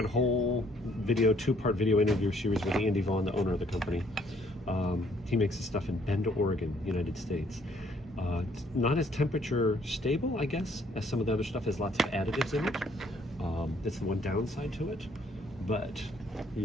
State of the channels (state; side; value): normal; both; correlation 0.64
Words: a whole video, two-part video interview series with Andy Vaughn, the owner of the company. He makes this stuff in Bend, Oregon, United States. It's not as temperature stable, I guess, as some of the other stuff. Has lots of additives in it. That's the one downside to it. But